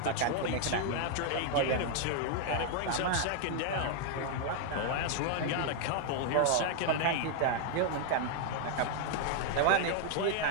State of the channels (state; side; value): different; both; correlation 0.00